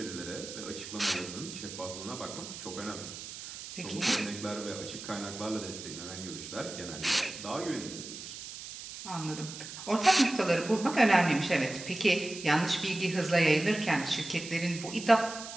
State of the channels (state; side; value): noise; right; hiss, 11 dB below the sound